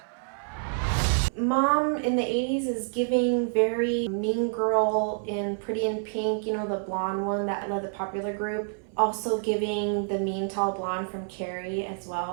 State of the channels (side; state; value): left; silent; 60 dB below the other